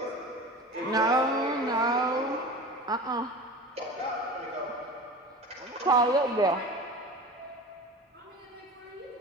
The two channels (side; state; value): both; normal; correlation 0.34